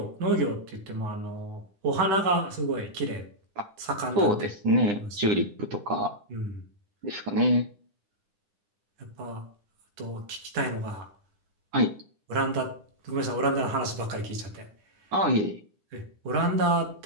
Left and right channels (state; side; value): late; left; 9.9 ms